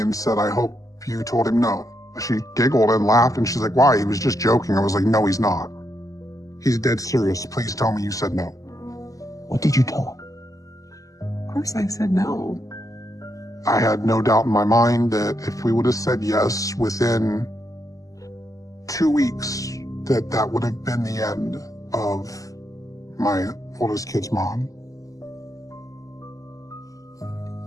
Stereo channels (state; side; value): late; right; 0.16 ms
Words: and said, I hope you told him no. She giggled and laughed, and she's like, why? He was just joking. I was like, no, he's not. He's dead serious. Please tell me you said no. What did you tell him? Of course I said no. I had no doubt in my mind that if we would have said yes within 2 weeks, that would have been the end of my oldest kid's mom.